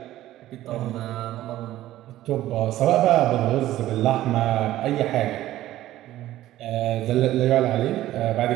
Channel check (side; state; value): left; quieter; 14.5 dB